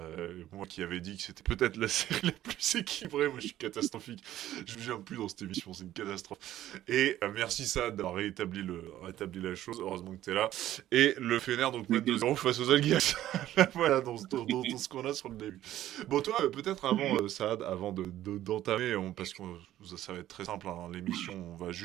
Moi qui avais dit que c'était peut-être la série la plus équilibrée, moi je suis catastrophique. Je ne viens plus dans cette émission, c'est une catastrophe. Et merci Saad d'avoir rétabli la chose, heureusement que t'es là. Et le Fener donc mène T'inquiète. 2-0 face aux Algiers. Voilà, dans ce qu'on a sur le début. Bon, toi, peut-être avant, Saad, avant d'entamer, parce que ça va être très simple, hein, l'émission, on va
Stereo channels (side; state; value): left; quieter; 13.3 dB